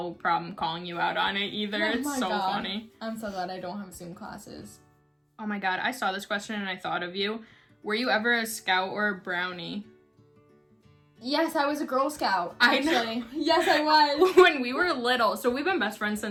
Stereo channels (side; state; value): both; identical; correlation 1.00